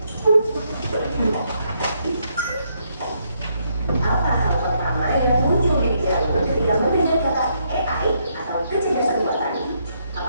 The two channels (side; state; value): both; inverted; correlation -0.75